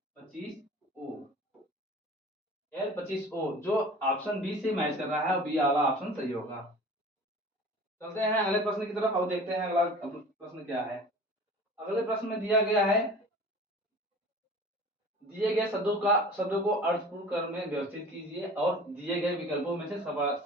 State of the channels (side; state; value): both; normal; correlation 0.42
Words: L25O, जो ऑप्शन बी से मैच कर रहा है और बी वाला ऑप्शन सही होगा। चलते हैं अगले प्रश्न की तरफ और देखते हैं अगला प्रश्न क्या है। अगले प्रश्न में दिया गया है, दिए गए शब्दों को अर्थपूर्ण क्रम में व्यवस्थित कीजिए और दिए गए विकल्पों में से